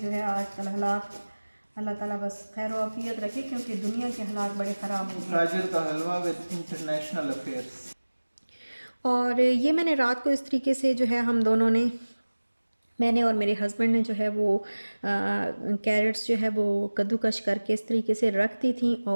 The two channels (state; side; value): inverted; both; correlation -1.00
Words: है आजकल हालात, अल्लाह ताला बस खैर आफियत रखे, क्योंकि दुनिया के हालात बड़े ख़राब हो गए। गाजर का हलवा विद इंटरनेशनल अफेयर्स। और ये मैंने रात को इस तरीके से जो है, हम दोनों ने, मैंने और मेरे हस्बैंड ने जो है वो कैरेट्स जो है वो कद्दूकश करके इस तरीके से रख दी थी।